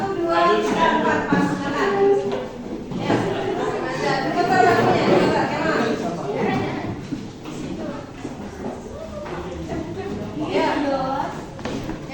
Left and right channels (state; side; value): identical; both; correlation 1.00